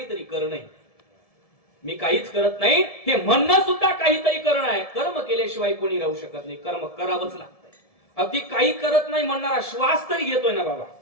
करणं आहे. मी काहीच करत नाही हे म्हणणं सुद्धा काहीतरी करणं आहे. कर्म केल्याशिवाय कोणी राहू शकत नाही, कर्म करावंच लागतंय. अगदी काही करत नाही म्हणणारा श्वास तरी घेतोय ना बाबा,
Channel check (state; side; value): late; right; 1.7 ms